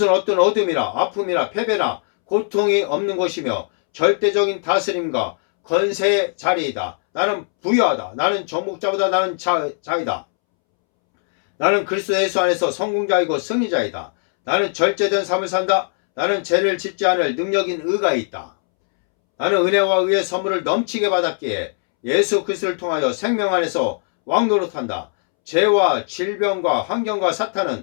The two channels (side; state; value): right; silent; 66 dB below the other